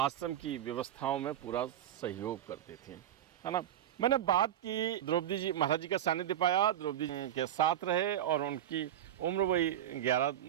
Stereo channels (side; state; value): left; quieter; 11.2 dB